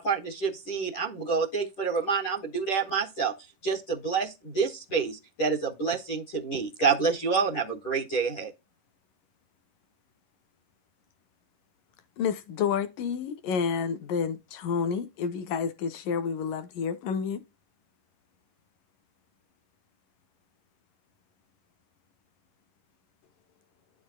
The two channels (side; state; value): right; late; 10 ms